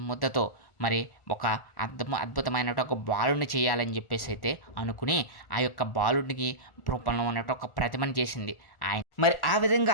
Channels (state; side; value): late; right; 1.4 ms